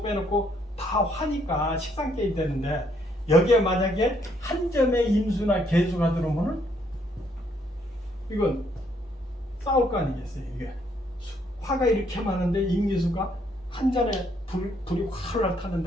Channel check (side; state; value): both; normal; correlation 0.70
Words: 빼놓고 다 화니까 식상계이 되는데 여기에 만약에 한 점에 임수나 개수가 들어오면은 이건 싸울 거 아니겠어요. 이게 화가 이렇게 많은데 임기수가 한 잔에 불이 활활